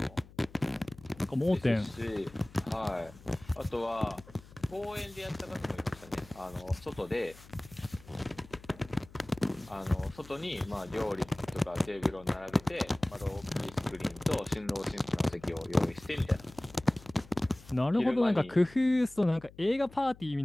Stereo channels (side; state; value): left; noise; hum, 21 dB below the sound